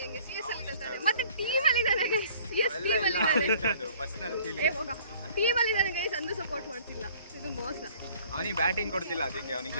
ಹೆಂಗೆ ಸಿಎಸ್ ಅಲ್ಲಿ ಇದ್ದಾನೆ, ಮತ್ತೆ ಟೀಮ್ ಅಲ್ಲಿ ಇದ್ದಾನೆ ಗೈಸ್. ಸಿಎಸ್ ಟೀಮ್ ಅಲ್ಲಿ ಇದ್ದಾನೆ, ಟೀಮ್ ಅಲ್ಲಿ ಇದ್ದಾನೆ ಗೈಸ್. ಅಂದು ಸಪೋರ್ಟ್ ಮಾಡ್ತಿಲ್ಲ, ಇದು ಮೋಸ. ಅವನಿಗೆ ಬ್ಯಾಟಿಂಗ್ ಕೊಡ್ತಿಲ್ಲ, ಅದಕ್ಕೆ ಅವನಿಗೆ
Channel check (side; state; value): both; inverted; correlation -0.54